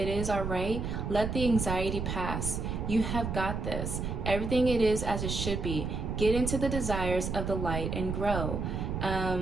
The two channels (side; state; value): right; noise; rumble, 3 dB below the sound